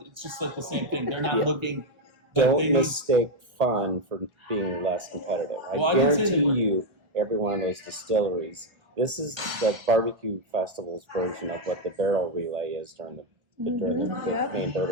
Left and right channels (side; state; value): left; late; 1.4 ms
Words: It's just like the same thing. They're not Yeah. looking. don't mistake fun for being less competitive. Well, I I didn't say that guarantee we're- you, every one of those distilleries, this is the barbecue festival's version of what the barrel relay is during the Yep. main